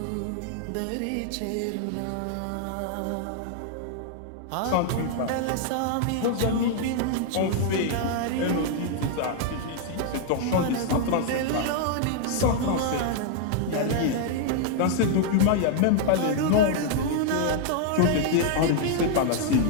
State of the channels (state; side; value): different; both; correlation 0.00